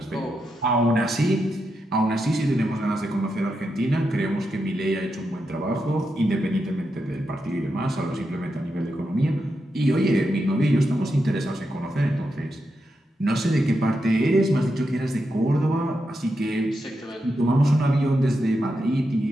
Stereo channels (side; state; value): both; normal; correlation 0.86